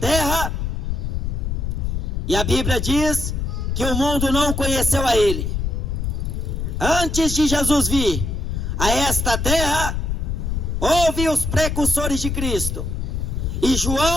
e a Bíblia diz que o mundo não conheceu a Ele. Antes de Jesus vir a esta terra, houve os precursores de Cristo, e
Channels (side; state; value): left; noise; rumble, 2 dB below the sound